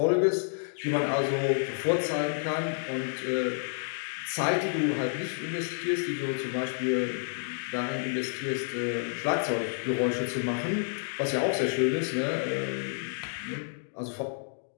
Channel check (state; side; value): silent; right; digital silence